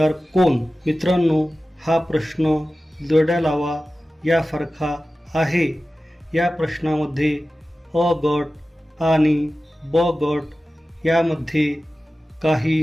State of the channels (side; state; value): both; normal; correlation 0.95